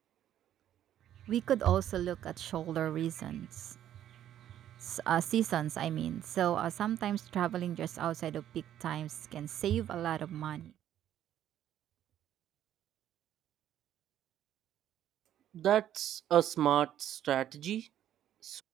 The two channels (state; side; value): quieter; left; 11.3 dB